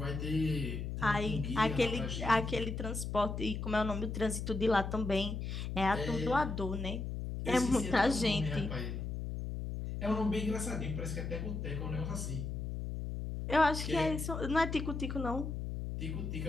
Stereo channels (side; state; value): left; noise; hum, 4 dB below the sound